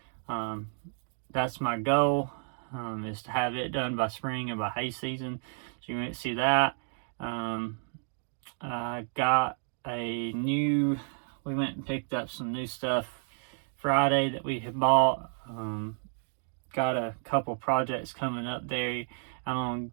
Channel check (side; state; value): left; silent; 57 dB below the other